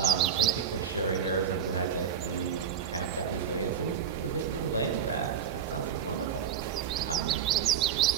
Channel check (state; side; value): quieter; left; 7.7 dB